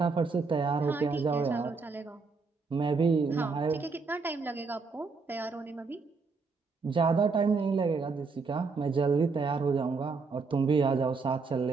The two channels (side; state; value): left; quieter; 4.5 dB